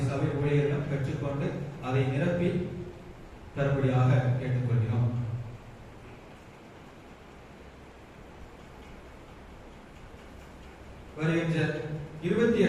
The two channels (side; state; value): both; identical; correlation 1.00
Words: சபை ஊழியரிடம் பெற்றுக்கொண்டு அதை நிரப்பி தரும்படியாக கேட்டுக்கொள்கிறோம். வருகின்ற